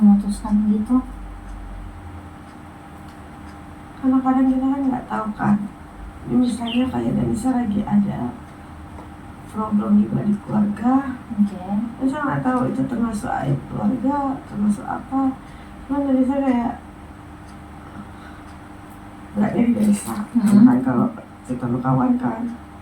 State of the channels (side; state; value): both; identical; correlation 1.00